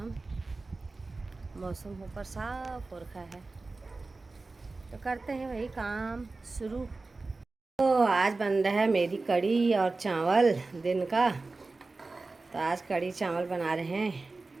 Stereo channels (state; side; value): quieter; left; 3.6 dB